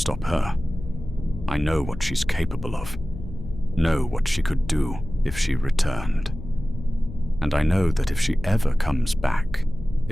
her. I know what she's capable of, know what she could do if she returned. And I know that if she ever comes back,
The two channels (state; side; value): noise; left; hum, 11 dB below the sound